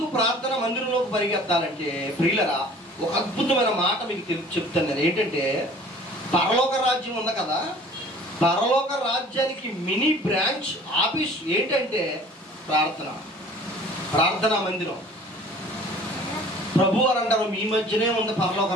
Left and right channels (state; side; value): normal; both; correlation 0.49